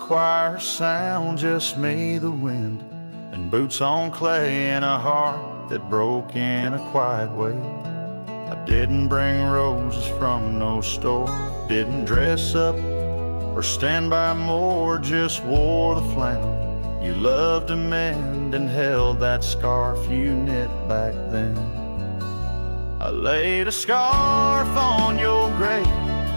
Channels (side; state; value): both; inverted; correlation -1.00